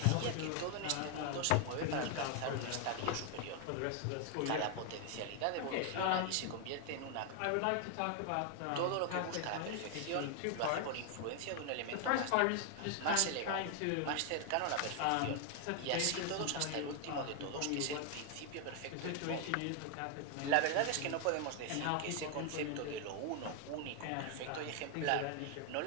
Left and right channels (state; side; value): different; both; correlation 0.00